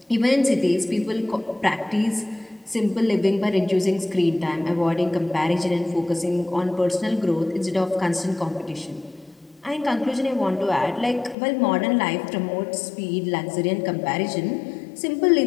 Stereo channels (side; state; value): right; drops out; at 11.4 s